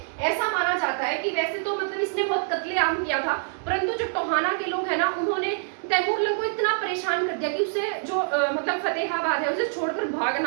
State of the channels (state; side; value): silent; left; 61 dB below the other